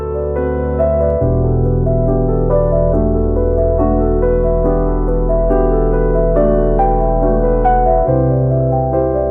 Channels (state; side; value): identical; both; correlation 1.00